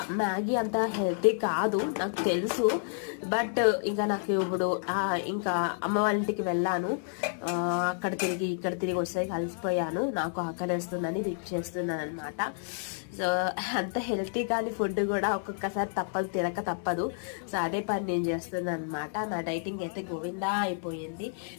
మ్యాగీ అంత హెల్తీ కాదు నాకు తెలుసు. బట్ ఇంకా నాకు ఇప్పుడు ఇంకా అమ్మ వాళ్ళ ఇంటికి వెళ్ళాను. అక్కడ తిరిగి ఇక్కడ తిరిగి వచ్చేసరికి కలిసిపోయాను. నాకు ఆకలి వేస్తుందని రిక్ చేస్తున్నాను అనమాట. సో అంత హెల్తీ కానీ ఫుడ్ కూడా ఒక్కొక్కసారి తినక తప్పదు. సో అదే పని నేను చేస్తున్నాను అనమాట. నా డైటింగ్ అయితే గోవిందా అయిపోయింది.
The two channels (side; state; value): right; silent; 58 dB below the other